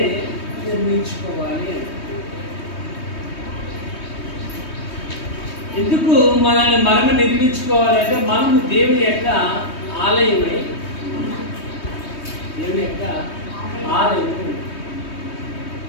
నిర్మించుకోవాలి. ఎందుకు మనల్ని మనమే నిర్మించుకోవాలంటే మనము దేవుని యొక్క ఆలయమై దేవుని యొక్క ఆలయం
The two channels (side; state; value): right; late; 3.2 ms